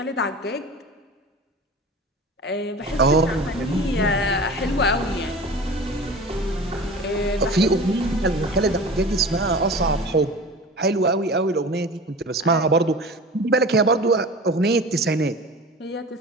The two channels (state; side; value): normal; both; correlation 0.36